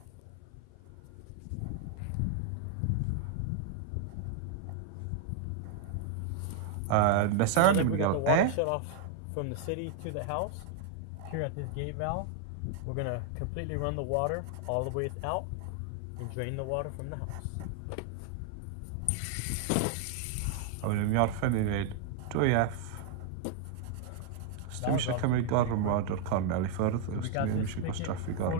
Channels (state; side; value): different; both; correlation 0.00